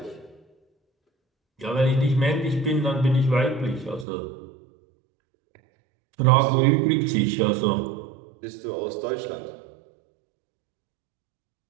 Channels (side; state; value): left; drops out; at 4.0 s